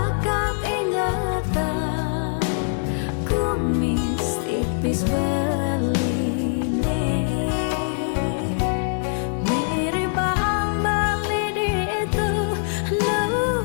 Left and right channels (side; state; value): right; silent; digital silence